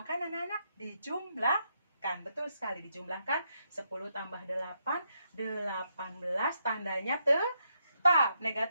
anak-anak? Dijumlahkan. Betul sekali, dijumlahkan. 10 tambah 8, 18. Tandanya tetap.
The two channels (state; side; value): inverted; both; correlation -0.79